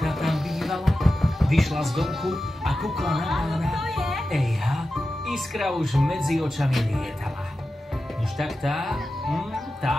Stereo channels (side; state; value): both; normal; correlation 0.92